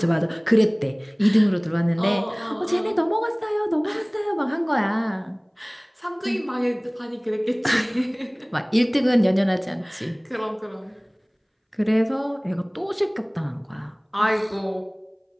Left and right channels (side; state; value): both; identical; correlation 1.00